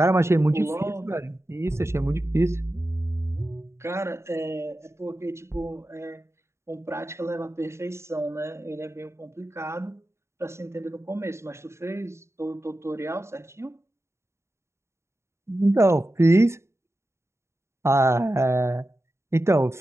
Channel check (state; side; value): late; left; 0.13 ms